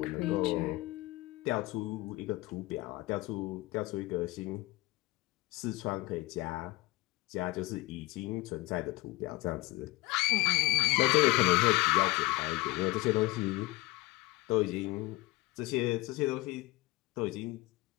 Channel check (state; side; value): quieter; right; 20.8 dB